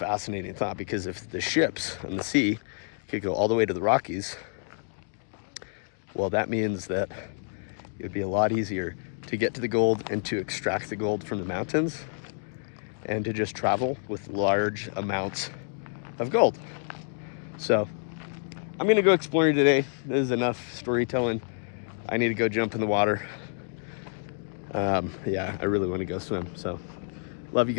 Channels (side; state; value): right; silent; 58 dB below the other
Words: thought, because if the ships on the sea could go all the way to the Rockies, well, that means that it would be a lot easier to get to the gold and to extract the gold from the mountains and to just travel with large amounts of gold. So I'm gonna go exploring today. This is enough storytelling. I need to go jump in the water. Yeah, I really want to go swim. So love you